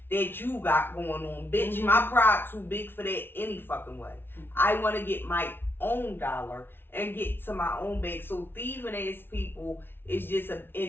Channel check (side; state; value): right; late; 0.11 ms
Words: that you got going on. Bitch, my pride too big for that any fucking way. I wanna get my own dollar and get to my own bag. So thieving ass people is just